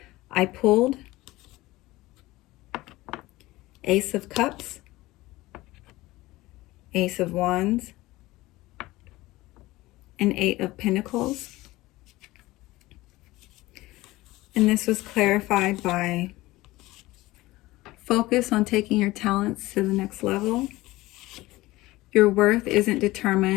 I pulled Ace of Cups, Ace of Wands, and Eight of Pentacles. And this was clarified by focus on taking your talents to the next level. Your worth isn't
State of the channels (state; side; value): quieter; right; 18.9 dB